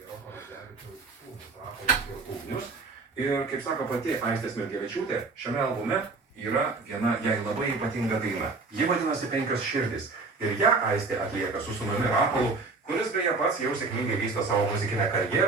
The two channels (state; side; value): quieter; left; 3.9 dB